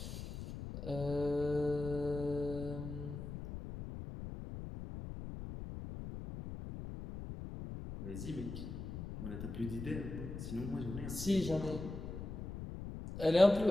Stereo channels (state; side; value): noise; left; rumble, 8 dB below the sound